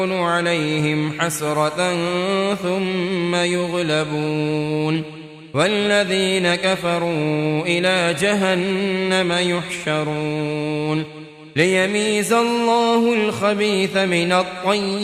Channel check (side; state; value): both; identical; correlation 1.00